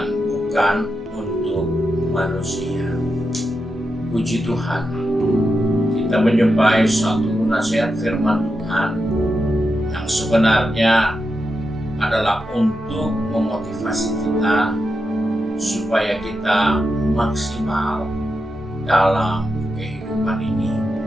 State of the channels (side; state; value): both; normal; correlation 0.87